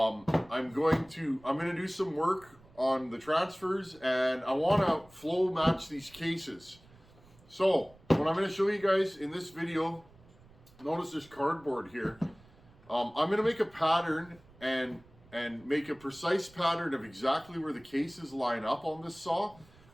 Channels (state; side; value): noise; right; rumble, 26 dB below the sound